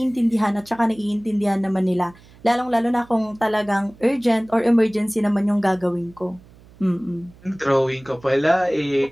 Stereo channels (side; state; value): right; noise; hum, 25 dB below the sound